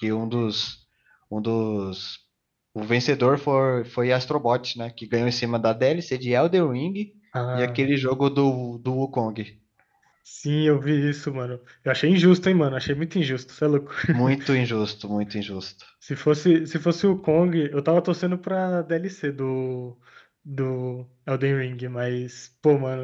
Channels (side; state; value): both; identical; correlation 1.00